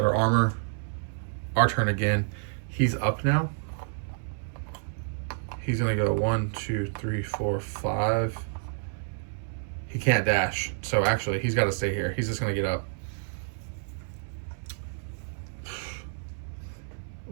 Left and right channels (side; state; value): left; silent; 58 dB below the other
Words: her armor. Our turn again. He's up now. He's going to go 1, 2, 3, 4, 5. He can't dash. So actually, he's got to stay here. He's just going to get up.